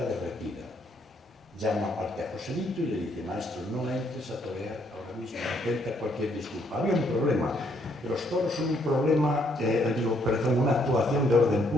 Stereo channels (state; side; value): normal; both; correlation 0.70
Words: derretida. Llama aparte a Joselito y le dice: maestro, no entres a torear ahora mismo, intenta cualquier disculpa. Había un problema. Los toros son un problema, una actuación de orden